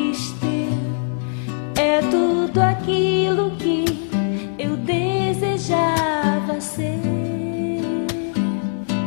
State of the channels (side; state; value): right; silent; digital silence